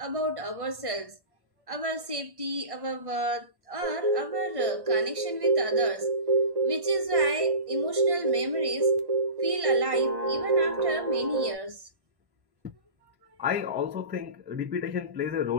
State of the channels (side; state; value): left; late; 1.1 ms